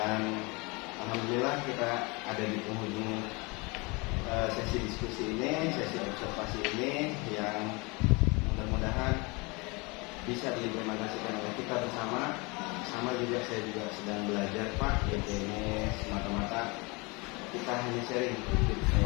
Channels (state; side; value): quieter; right; 27.5 dB